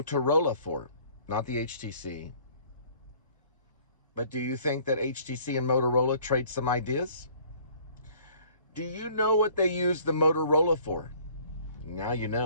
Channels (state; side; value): inverted; both; correlation -0.55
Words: for? Not the HTC. But do you think that HTC and Motorola trade some ideas? Do you know what they use the Motorola for? Now you